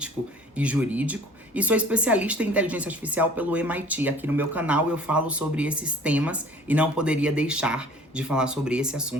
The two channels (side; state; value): both; normal; correlation 0.50